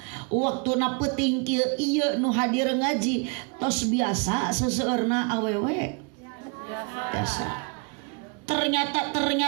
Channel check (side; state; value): left; quieter; 34.0 dB